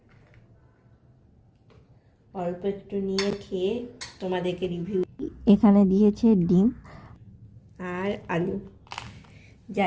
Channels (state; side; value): identical; both; correlation 1.00